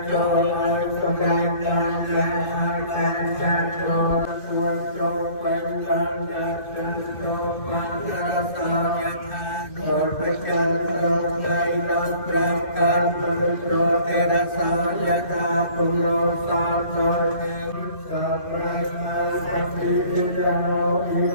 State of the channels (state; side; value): late; right; 2.6 ms